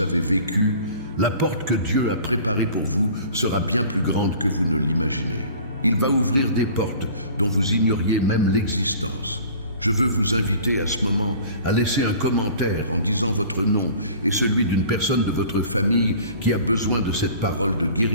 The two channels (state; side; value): inverted; both; correlation -0.46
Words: vécu, la porte que Dieu a préparée pour vous sera bien plus grande que vous ne l'imaginez. Il va ouvrir des portes dont vous ignoriez même l'existence. Je veux vous inviter à ce moment à laisser un commentaire en disant votre nom et celui d'une personne de votre famille qui a besoin de cette parole de